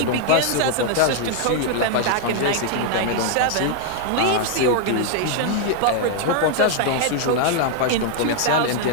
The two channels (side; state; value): both; different; correlation 0.00